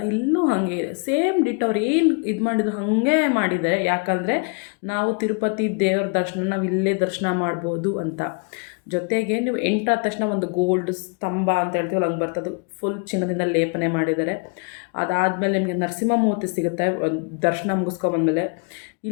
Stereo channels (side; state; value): right; quieter; 35.4 dB